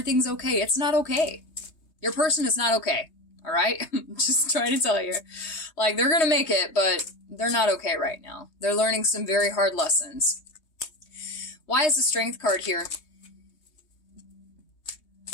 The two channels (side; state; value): right; late; 3.2 ms